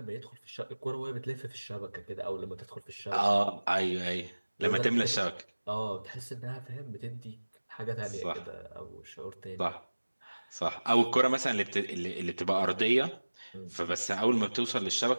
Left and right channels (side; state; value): both; inverted; correlation -1.00